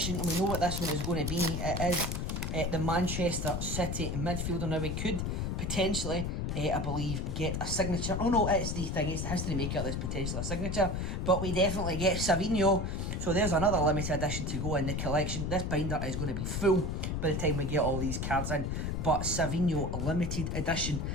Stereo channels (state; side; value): noise; left; rumble, 1 dB below the sound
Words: and we know what this one is going to be. It is the Manchester City midfielder. Now we could potentially, I believe, get a signature. Oh no, it's the History Maker that's potentially a signature, but we definitely get Savinho. So there's another limited edition to go in the collection. This binder is going to be full by the time we get all these cards in, but Savinho limited edition